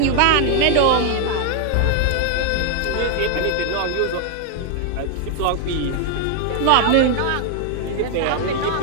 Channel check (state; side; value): different; both; correlation 0.00